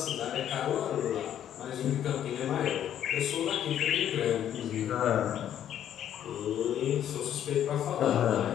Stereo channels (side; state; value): right; quieter; 10.4 dB